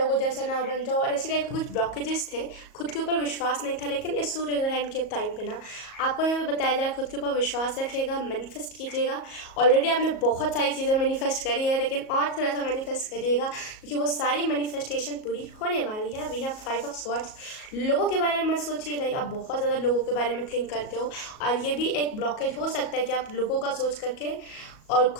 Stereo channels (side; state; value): right; late; 37 ms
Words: जैसा ना बन जाऊँ, और ऐसी टाइप के कुछ ब्लॉकेजेस थे। खुद के ऊपर विश्वास नहीं था, लेकिन इस सूर्य ग्रहण के टाइम पे ना आपको यहाँ पे बताया जाए खुद के ऊपर विश्वास रखिएगा, मैनिफेस्ट कीजिएगा। ऑलरेडी आपने बहुत सारी चीज़ें मैनिफेस्ट करी है, लेकिन और थोड़ा सा मैनिफेस्ट करिएगा क्योंकि वो सारी मैनिफेस्टेशन पूरी होने वाली है। We have 5 of swords. लोगों के बारे में मत सोचिए, लाइक आप बहुत ज़्यादा लोगों के बारे में थिंक करते हो, और ये भी एक ब्लॉकेज हो सकता है कि आप लोगों का सोच करके और